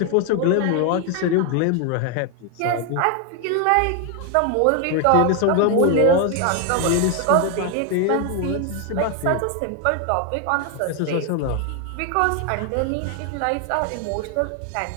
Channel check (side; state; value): both; different; correlation 0.01